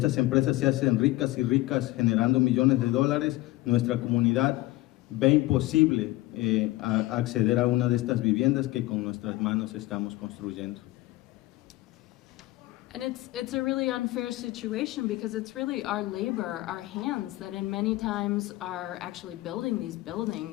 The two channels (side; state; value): right; quieter; 18.2 dB